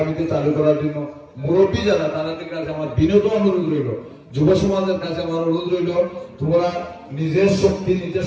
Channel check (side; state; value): both; identical; correlation 1.00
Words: চালু করার জন্য মুরব্বী যারা তাদের কাছে আমার বিনীত অনুরোধ রইল, যুব সমাজের কাছে আমার অনুরোধ রইল, তোমরা নিজের শক্তি নিজে